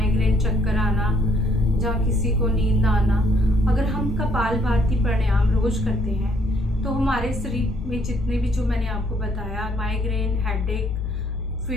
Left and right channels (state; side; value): normal; both; correlation 0.67